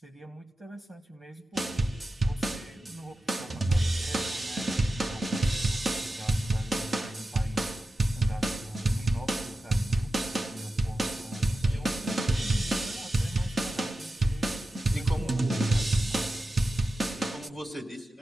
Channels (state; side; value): normal; both; correlation 0.92